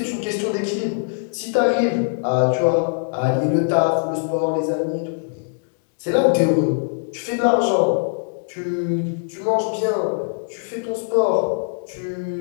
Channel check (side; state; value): right; silent; digital silence